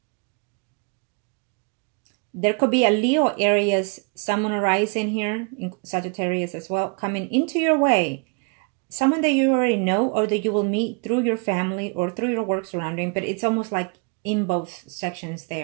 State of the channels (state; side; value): quieter; left; 33.5 dB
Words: There could be a Leo, Aries, Sun, or Rising here, in Sagittarius as well, coming into your way. Someone that you already know or that you will meet through your family or through your work surrounding, but it's almost like in both sections